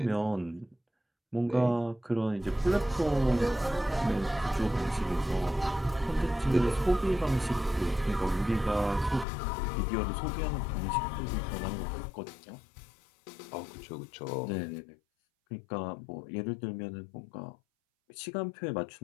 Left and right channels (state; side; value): drops out; right; at 9.2 s